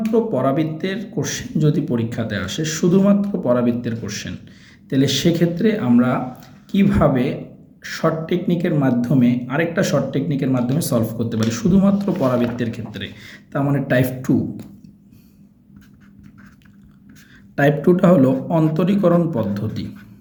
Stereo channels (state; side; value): identical; both; correlation 1.00